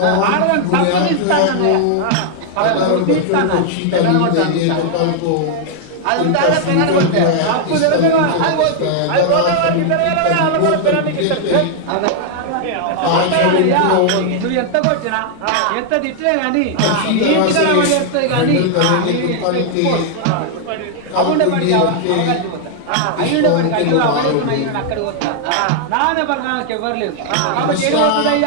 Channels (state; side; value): different; both; correlation 0.00